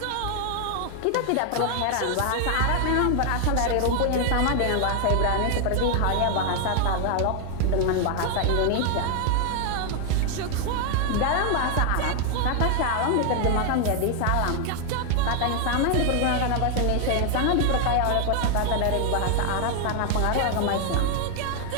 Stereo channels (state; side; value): different; both; correlation 0.00